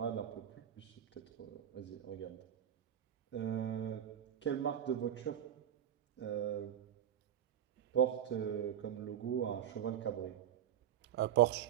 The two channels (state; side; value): quieter; left; 10.3 dB